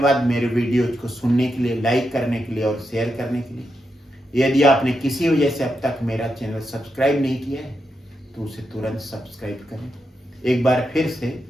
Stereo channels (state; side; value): normal; both; correlation 0.85